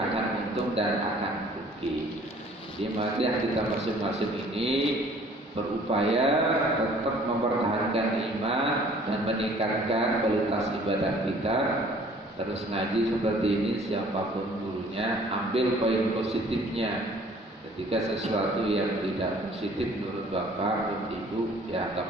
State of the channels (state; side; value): normal; both; correlation 0.54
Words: untung dan akan rugi. Jadi mari kita masing-masing ini berupaya tetap mempertahankan iman dan meningkatkan kualitas ibadah kita. Terus ngaji seperti ini, siapapun gurunya, ambil poin positifnya. Ketika sesuatu yang tidak positif menurut bapak, ibu, ya